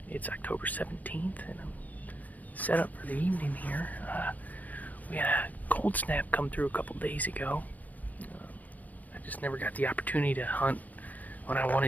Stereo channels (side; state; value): right; late; 0.079 ms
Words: It's October 17th, and I'm set up for the evening here. We had a cold snap come through a couple days ago. I just never got the opportunity to hunt when I